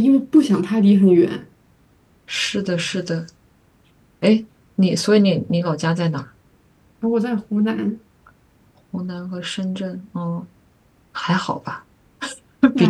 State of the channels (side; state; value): both; identical; correlation 1.00